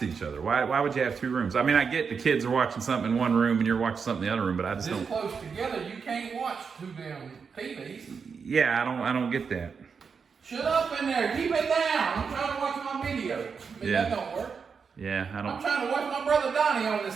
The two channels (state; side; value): quieter; left; 5.8 dB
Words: each other. Why would you have two rooms? I mean, I get the kids are watching something in one room and you're watching something in the other room, but I just This don't. close together, you can't watch two damn TVs. Yeah, I don't get that. Shut up in there. Keep it down. I'm trying to watch my video. Yeah. That don't work. Yeah, I I'm don't. trying to watch my brother Donnie on this